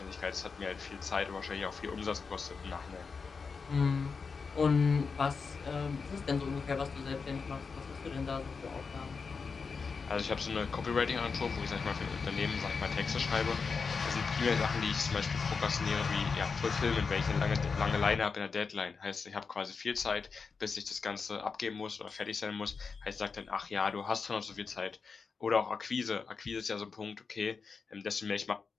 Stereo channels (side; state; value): right; quieter; 5.1 dB